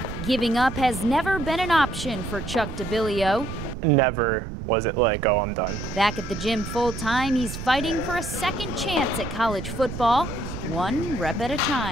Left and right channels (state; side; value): noise; right; rumble, 8 dB below the sound